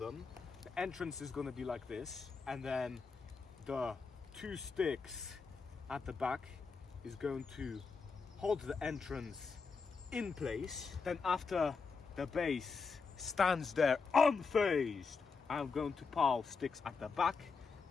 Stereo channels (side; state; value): right; quieter; 4.9 dB